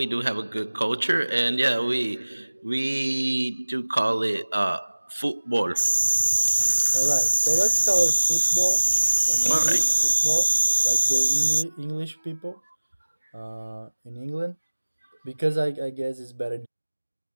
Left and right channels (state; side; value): inverted; both; correlation -1.00